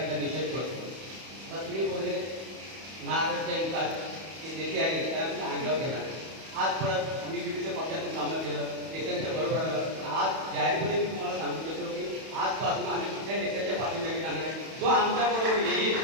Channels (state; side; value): late; left; 31 ms